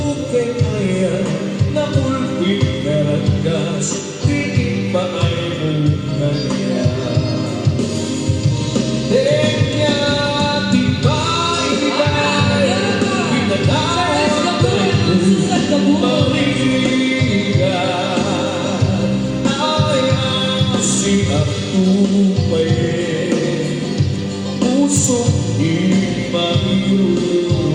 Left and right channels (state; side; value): identical; both; correlation 1.00